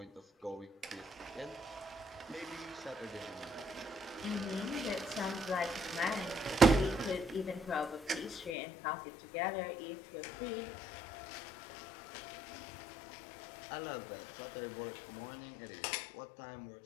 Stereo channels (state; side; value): drops out; right; at 8.6 s